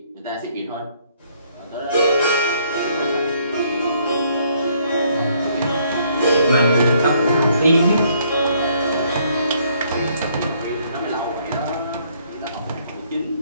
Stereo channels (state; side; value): inverted; both; correlation -0.67